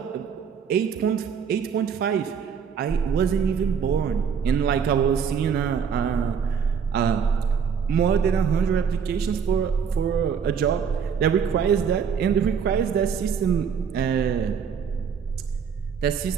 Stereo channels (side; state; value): left; quieter; 6.8 dB